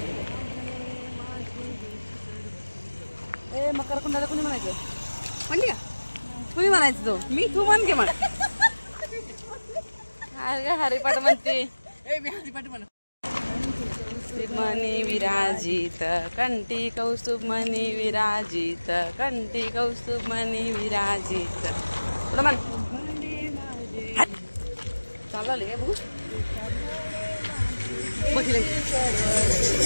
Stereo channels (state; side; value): inverted; both; correlation -1.00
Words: ए मकर कुंडाला कुणी म्हणायचं म्हणली का? कुणी म्हणायचं तो मी तू म्हण घे म्हण. हरिपाठ म्हणते मी हरिपाठ म्हण. मनी विराजित कंठी कौस्तुभ मनी विराजित कंठी कौस्तुभ मनी विराजित पुढं म्हण. चालले काय बघू बघितलं